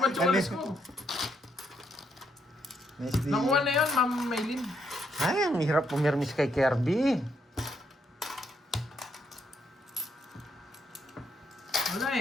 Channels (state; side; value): normal; both; correlation 0.75